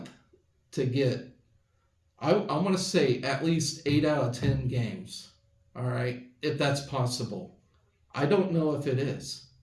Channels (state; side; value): identical; both; correlation 1.00